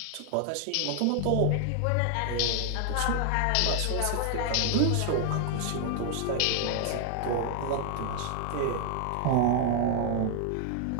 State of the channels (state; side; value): different; both; correlation 0.00